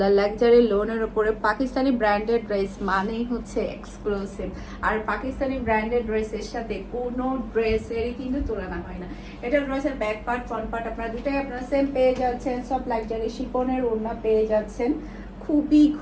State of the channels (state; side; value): identical; both; correlation 1.00